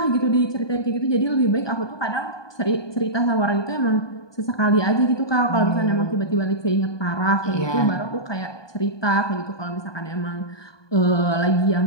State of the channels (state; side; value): late; right; 1.2 ms